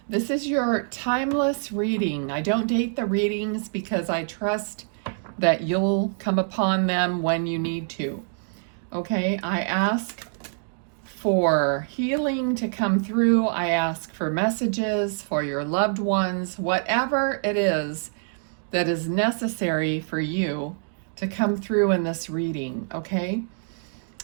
This is your timeless reading. I don't date the readings because I trust that you'll come upon them when you need to. Okay, I ask for healing to come through. I ask for messages for your loved ones, whatever it is that is necessary for you to come through in this reading, okay?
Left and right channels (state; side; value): silent; left; digital silence